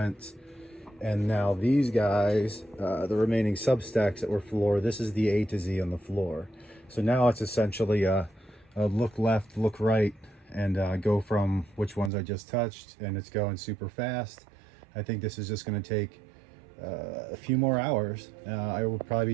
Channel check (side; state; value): left; drops out; at 12.1 s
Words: And now these guys, the remaining substacks that were floor, this is the A to Z on the floor. So now it's essentially a look left, look right, and go from which ones I just touched, and it's going super fast. I think this is just going to take a few more hours. I will probably